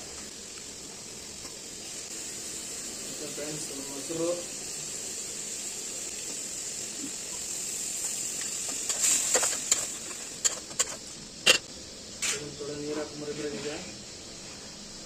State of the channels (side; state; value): both; identical; correlation 1.00